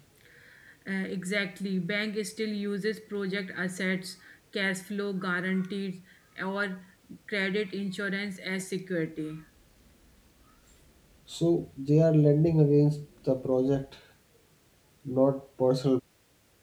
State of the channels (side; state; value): both; identical; correlation 1.00